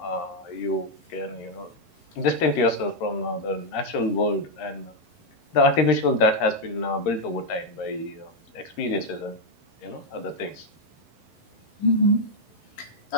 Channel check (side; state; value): right; late; 11 ms